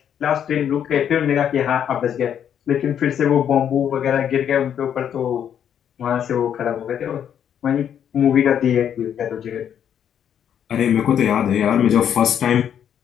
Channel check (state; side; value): quieter; right; 9.1 dB